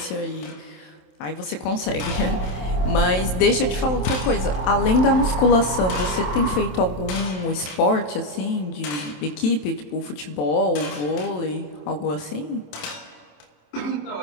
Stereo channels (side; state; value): right; late; 27 ms